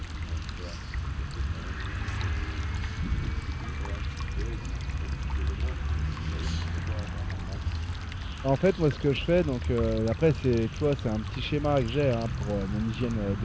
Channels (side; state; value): both; identical; correlation 1.00